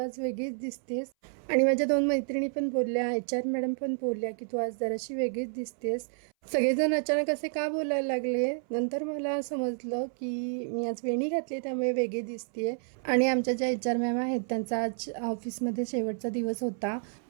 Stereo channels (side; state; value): left; silent; 58 dB below the other